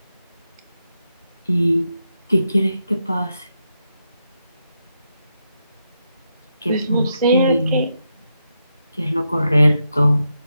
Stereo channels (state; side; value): inverted; both; correlation -0.84